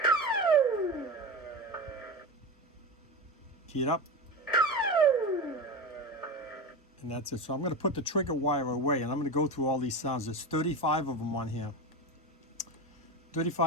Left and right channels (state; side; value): normal; both; correlation 0.22